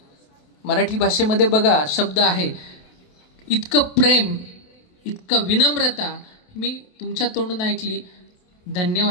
मराठी भाषेमध्ये बघा शब्द आहे, इतकं प्रेम, इतकं विनम्रता मी तुमच्या तोंडून ऐकली.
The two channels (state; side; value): late; right; 28 ms